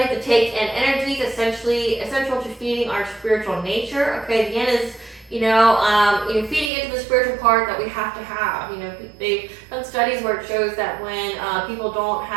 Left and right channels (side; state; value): left; drops out; at 6.7 s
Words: to take in energies, essential to feeding our spiritual nature. Okay, the yin is feeding into the spiritual part that we have to have. They've done studies where it shows that when people don't